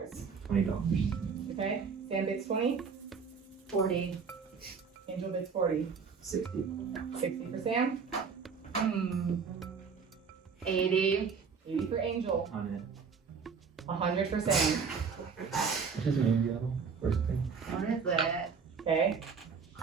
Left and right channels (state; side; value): quieter; left; 5.7 dB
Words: $20. Okay, Sam bids 20. 40. Angel bids 40. 60. 60 for Sam. 80. 80 for Angel. 100. 100 for Sam. Just maybe first thing. What is it? Okay,